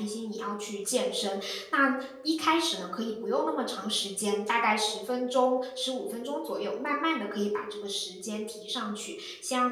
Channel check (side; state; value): both; identical; correlation 1.00